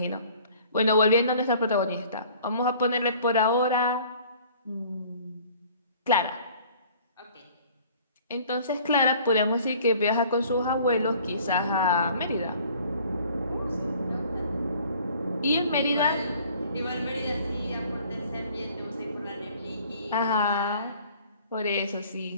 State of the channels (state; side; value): inverted; both; correlation -0.52